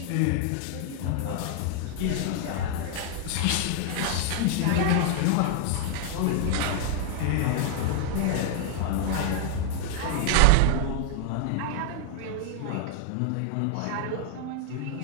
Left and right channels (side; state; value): both; different; correlation 0.00